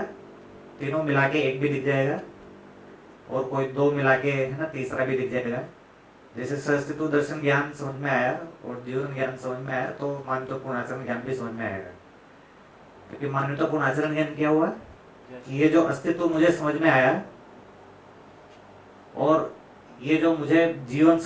तीनों मिला के एक भी दिख जाएगा, और कोई 2 मिला के है ना तीसरा भी दिख जाएगा। जैसे सहअस्तित्व दर्शन ज्ञान समझ में आया और जीवन ज्ञान समझ में आया, तो मानवतापूर्ण आचरण ज्ञान भी समझ में आएगा। क्योंकि मानवतापूर्ण आचरण ज्ञान क्या हुआ कि ये जो अस्तित्व मुझे समझ में आया और ये जो मुझे जीवन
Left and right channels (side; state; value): both; identical; correlation 1.00